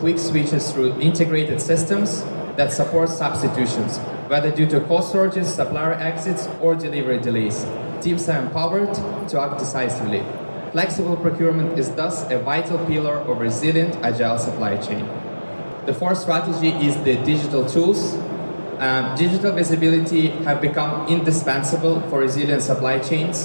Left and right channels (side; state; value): both; inverted; correlation -1.00